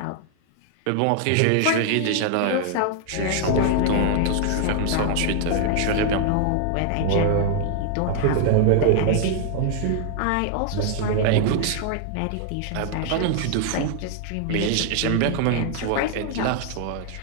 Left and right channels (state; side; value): different; both; correlation 0.00